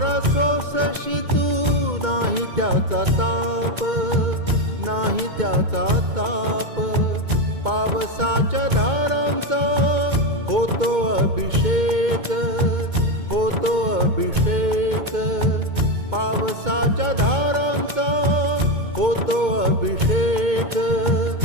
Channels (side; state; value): left; late; 2.2 ms